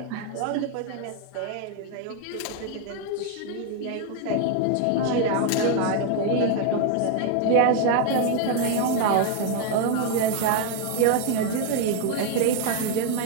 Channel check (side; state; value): both; different; correlation 0.01